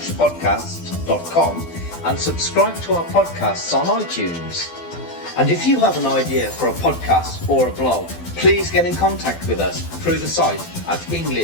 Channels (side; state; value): right; late; 12 ms